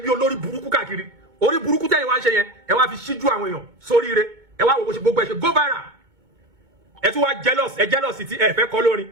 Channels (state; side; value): late; left; 2.2 ms